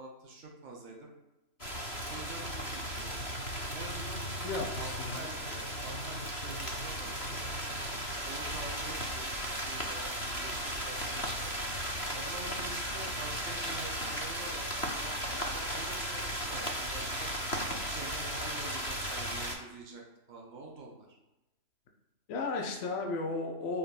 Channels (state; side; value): late; right; 3.0 ms